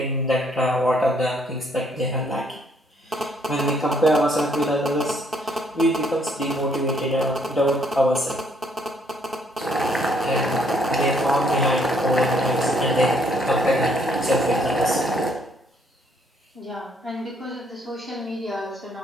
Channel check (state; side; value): normal; both; correlation 0.67